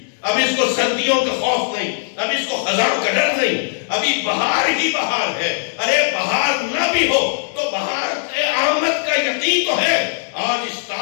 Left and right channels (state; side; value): silent; right; digital silence